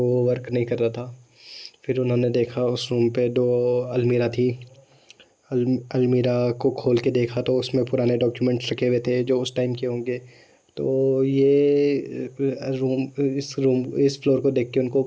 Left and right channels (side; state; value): both; identical; correlation 1.00